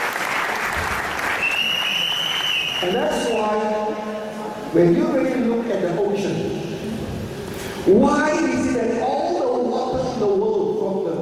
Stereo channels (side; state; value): both; identical; correlation 1.00